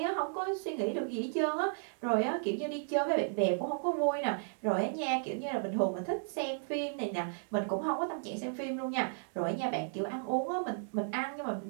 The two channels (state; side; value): silent; left; digital silence